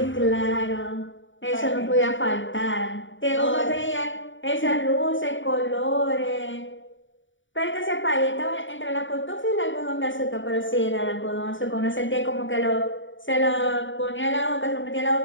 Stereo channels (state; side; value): late; right; 0.56 ms